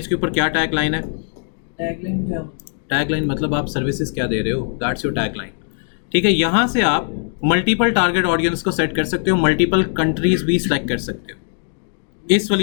के ऊपर क्या टैगलाइन है। टैगलाइन क्या? टैगलाइन मतलब आप सर्विसेज क्या दे रहे हो, दैट्स योर टैगलाइन। ठीक है, यहाँ से आप मल्टीपल टारगेट ऑडियंस को सेट कर सकते हो, मल्टीपल कंट्रीज भी सिलेक्ट कर सकते हो इस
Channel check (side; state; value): right; silent; 66 dB below the other